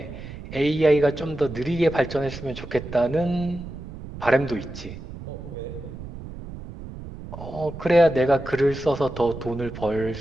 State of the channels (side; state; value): right; noise; rumble, 12 dB below the sound